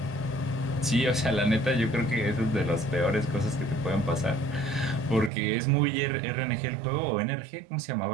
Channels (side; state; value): left; drops out; at 5.3 s